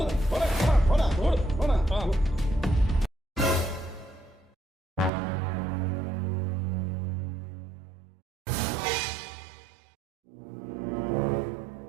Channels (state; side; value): drops out; left; at 5.1 s